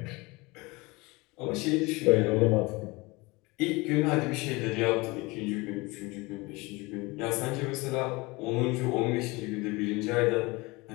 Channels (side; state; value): right; quieter; 24.1 dB